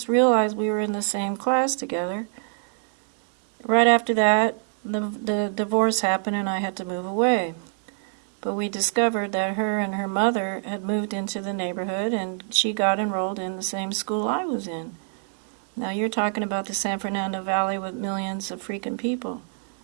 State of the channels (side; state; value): left; silent; 57 dB below the other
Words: realized we were in the same class together. Right after that, the divorce happened and I had to move away. But we discovered that her and her mother had moved into the neighborhood and she got enrolled in the same school I was in. Now you're talking about the San Fernando Valley with millions of freaking people.